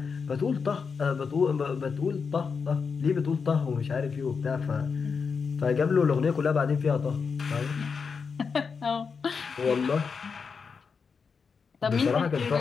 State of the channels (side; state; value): right; quieter; 5.5 dB